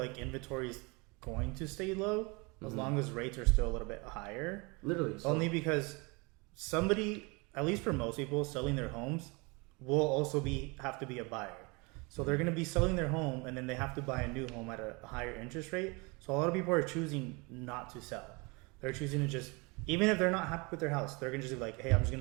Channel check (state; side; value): quieter; left; 28.1 dB